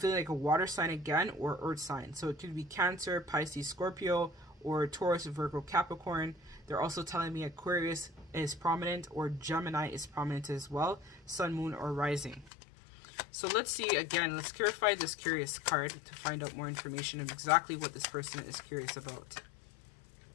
like a water sign again, or earth sign. So it could be Cancer, Pisces, Scorpio, or Taurus, Virgo, Capricorn. They're also telling me Aquarius is prominent, or Gemini is prominent as well, Sun, Moon, or Rising. So let's see, again, let's clarify this curious card to find out more information of exactly what this person is curious about.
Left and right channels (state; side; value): drops out; right; at 12.5 s